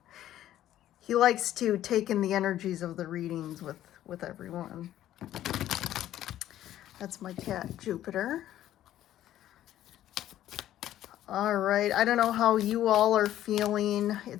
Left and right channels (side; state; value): right; quieter; 12.7 dB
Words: He likes to take in the energies of the readings with everyone. That's my cat, Jupiter. All right, I don't know how you all are feeling.